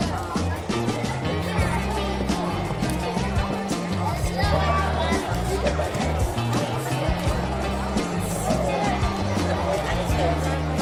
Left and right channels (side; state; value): both; identical; correlation 1.00